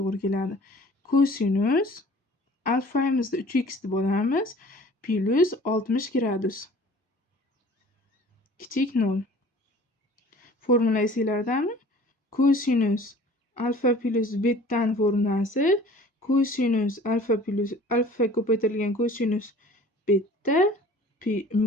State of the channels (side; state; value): both; normal; correlation 0.48